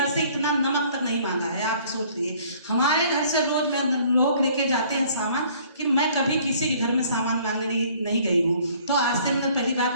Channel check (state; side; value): inverted; both; correlation -0.57